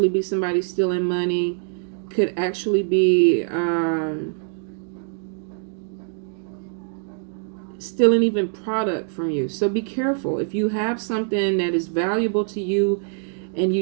be somebody stealing money. Could actually be stealing even product from you. So be careful. If you have something that is valuable to you and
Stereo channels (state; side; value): silent; left; digital silence